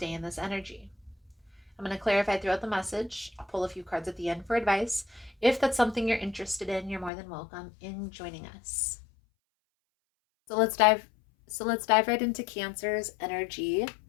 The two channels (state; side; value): drops out; right; at 7.1 s